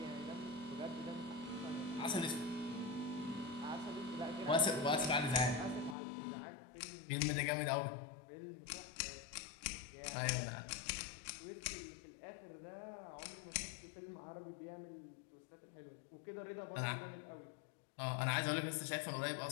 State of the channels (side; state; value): right; drops out; at 6.0 s